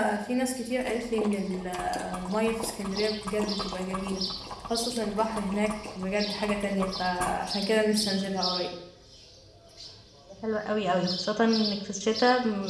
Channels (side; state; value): both; identical; correlation 1.00